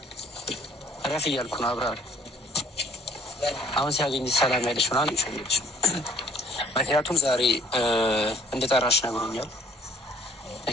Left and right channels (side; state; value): both; normal; correlation 0.57